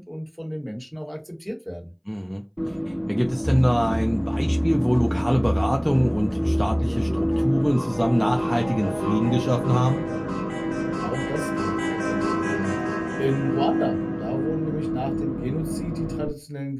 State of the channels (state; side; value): identical; both; correlation 1.00